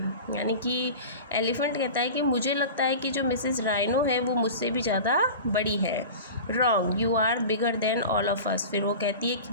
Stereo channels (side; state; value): both; inverted; correlation -0.34